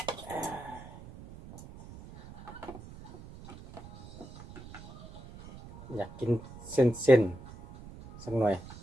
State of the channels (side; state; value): right; noise; rumble, 16 dB below the sound